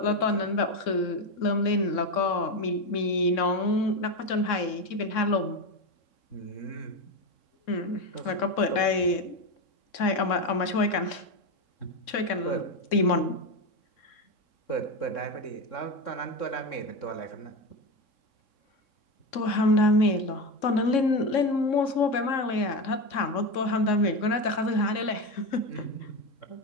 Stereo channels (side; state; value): right; late; 3.6 ms